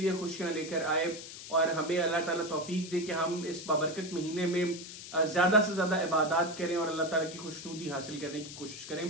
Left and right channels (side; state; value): left; noise; hiss, 12 dB below the sound